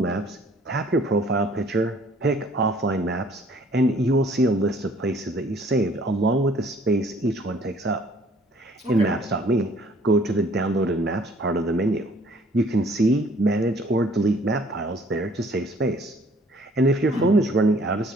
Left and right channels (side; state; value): both; normal; correlation 0.58